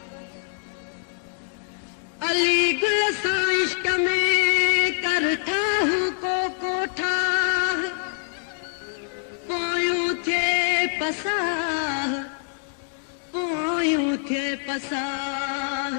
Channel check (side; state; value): right; silent; digital silence